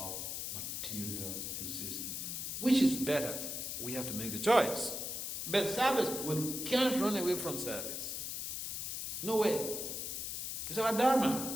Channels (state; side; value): noise; left; hiss, 4 dB below the sound